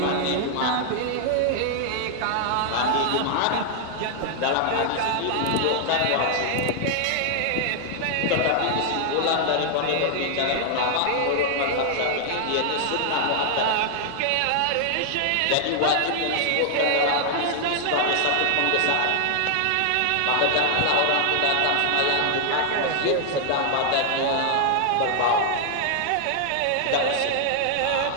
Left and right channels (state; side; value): different; both; correlation 0.00